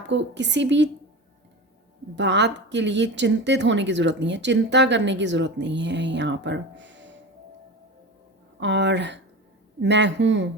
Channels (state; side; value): normal; both; correlation 0.28